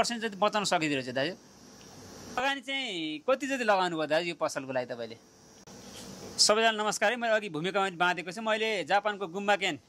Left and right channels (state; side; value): identical; both; correlation 1.00